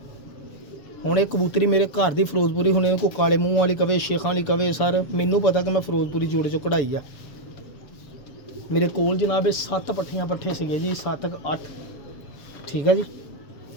ਹੁਣ ਇਹ ਕਬੂਤਰੀ ਮੇਰੇ ਘਰ ਦੀ ਫਿਰੋਜ਼ਪੁਰੀ, ਹੁਣ ਇਹ ਕੋਈ ਕਾਲੇ ਮੂੰਹ ਵਾਲੀ ਕਵੇ, ਸ਼ੇਖਾਂ ਵਾਲੀ ਕਵੇ, ਸਰ ਮੈਨੂੰ ਪਤਾ ਕਿ ਮੈਂ ਫਿਰੋਜ਼ਪੁਰੀ ਜੋੜੇ 'ਚੋਂ ਕਢਾਈ ਆ। ਮੇਰੇ ਕੋਲ ਜਨਾਬ ਇਹ 7 ਪੱਠੀਆਂ ਪੱਠੇ ਸੀਗੇ ਜੀ, 7-8, ਠੀਕ ਹੈ ਜੀ।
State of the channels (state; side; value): late; right; 7.2 ms